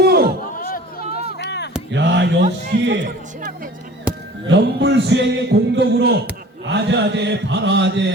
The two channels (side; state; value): both; normal; correlation 0.45